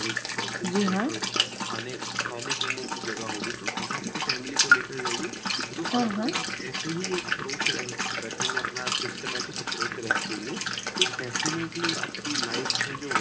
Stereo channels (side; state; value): both; identical; correlation 1.00